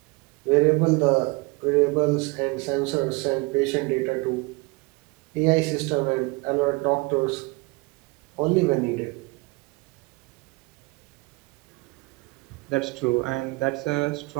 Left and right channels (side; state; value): left; quieter; 26.0 dB